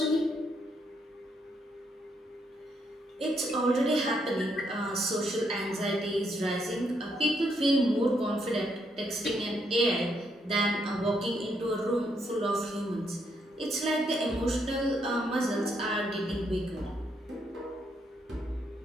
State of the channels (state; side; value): normal; both; correlation 0.76